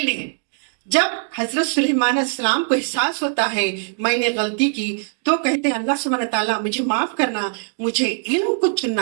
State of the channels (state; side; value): silent; left; 65 dB below the other